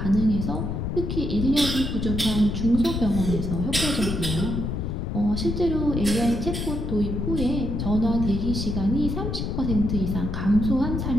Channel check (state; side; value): noise; left; rumble, 2 dB below the sound